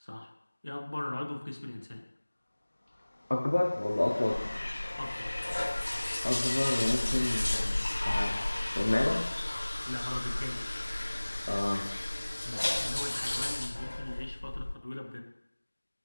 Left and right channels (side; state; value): both; inverted; correlation -1.00